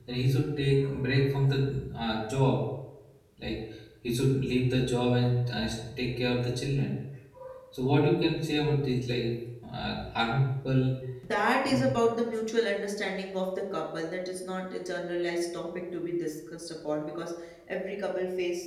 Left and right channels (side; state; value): both; identical; correlation 1.00